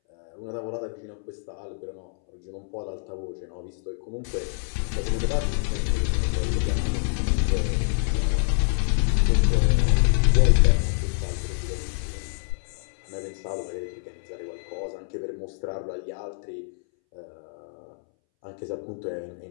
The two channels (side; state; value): right; silent; 61 dB below the other